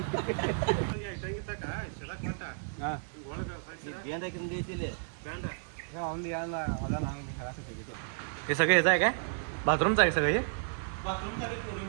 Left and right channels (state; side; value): silent; left; 56 dB below the other